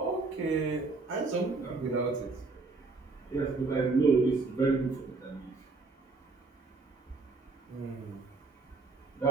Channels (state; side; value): quieter; left; 3.8 dB